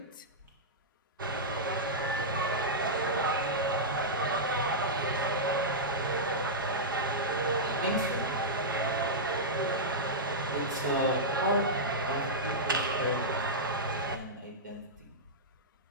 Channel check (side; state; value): both; normal; correlation -0.11